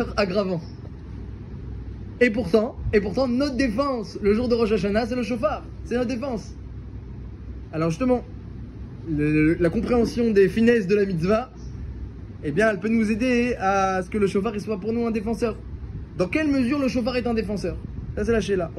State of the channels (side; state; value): both; identical; correlation 1.00